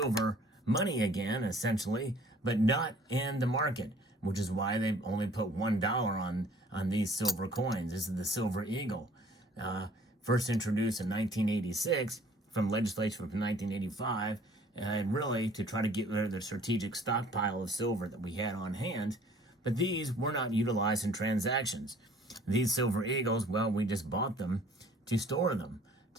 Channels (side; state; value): both; normal; correlation 0.55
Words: money again, essentially, but not in the market, which is why they only put $1 on these silver coins. This is the silver eagle. First introduced in 1986 from legislation from 1985, and really to try to get rid of the strategic stockpile of silver that we had on hand. But these were not utilized in transactions. These silver eagles, well, we just bought them to store them,